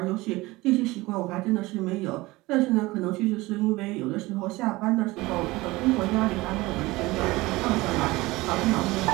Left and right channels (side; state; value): left; quieter; 20.6 dB